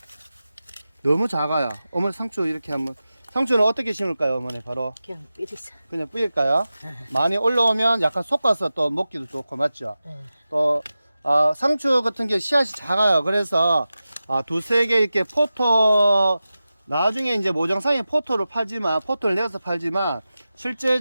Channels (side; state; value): both; inverted; correlation -0.94